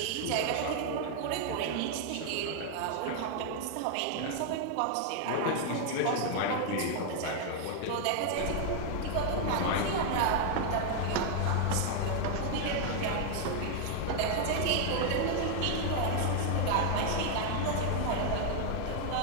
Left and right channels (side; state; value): both; different; correlation 0.00